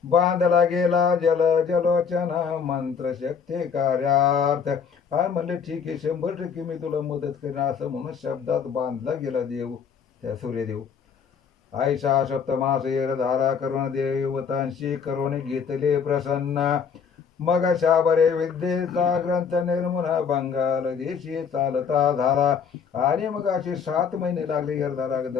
बांधला गेला जल जलोचन मंत्र शक्ती कार्यार्थ. आणि म्हणले ठीक आहे 100% मी तुला मदत करेन असं म्हणून शब्दात बांधला गेला देव, त्या सूर्यदेव. आयशा सप्तमास येर धारा करुण देवतांशी करुण घेतले प्रसन्न. मग शाबरे विद्येचा ग्रंथ निर्मून बंगाल देशी चालता झाला. आणि मग असे 7 महिने लागले यरधारा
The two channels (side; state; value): right; quieter; 6.6 dB